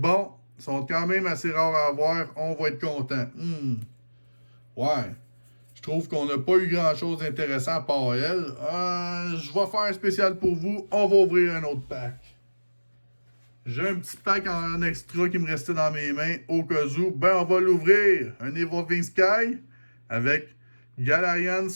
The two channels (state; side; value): inverted; both; correlation -1.00